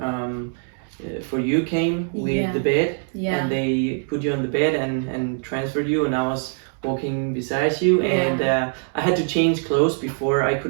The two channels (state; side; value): silent; left; 63 dB below the other